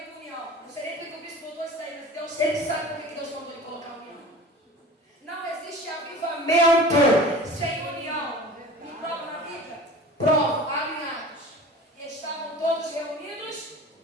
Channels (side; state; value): both; normal; correlation 0.40